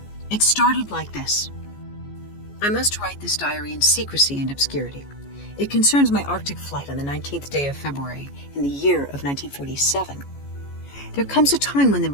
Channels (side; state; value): right; late; 14 ms